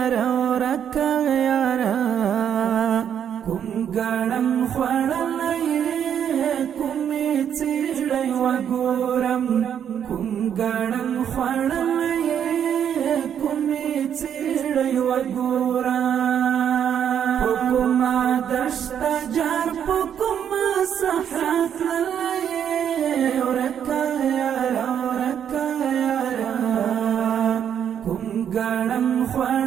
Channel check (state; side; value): quieter; left; 8.8 dB